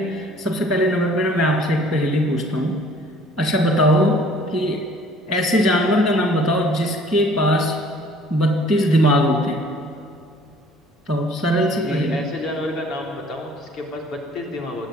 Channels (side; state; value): both; normal; correlation 0.54